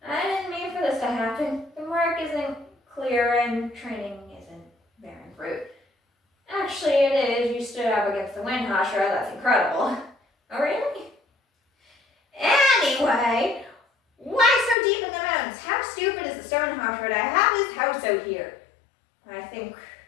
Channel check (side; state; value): right; drops out; at 14.8 s